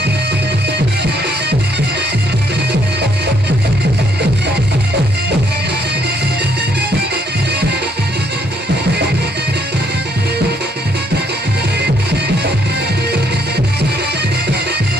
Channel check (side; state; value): both; normal; correlation 0.70